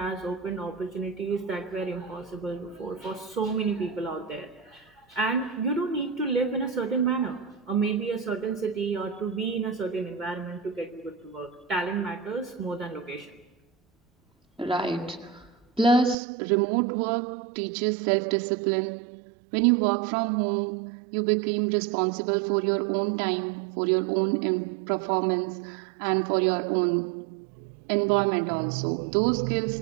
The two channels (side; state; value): left; drops out; at 16.2 s